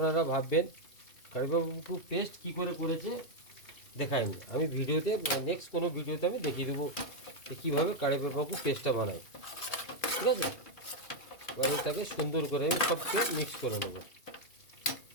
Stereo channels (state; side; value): late; right; 2.4 ms